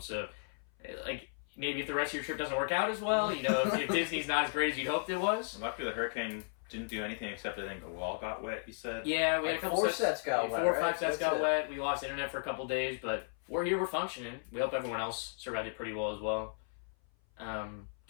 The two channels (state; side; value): silent; right; 54 dB below the other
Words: So, like, maybe if the rest of your trip doesn't work out as well, if Disney's not as great as you hoped it was. Luckily, the hurricane didn't do anything except I think a wall got wet, you said? Yeah, we had a couple 4 sets got wet. 4 or 5 right? sets That's got it. wet. We lost internet for a couple days, but we're here, we're functioning. We hope everyone else survived it pretty well as well. Do